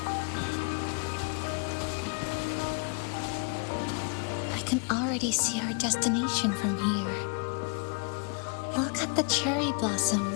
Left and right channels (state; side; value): quieter; right; 35.4 dB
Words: I can already see our destination from here. Look at the cherry